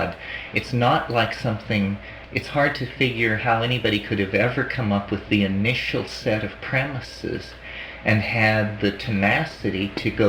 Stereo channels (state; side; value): identical; both; correlation 1.00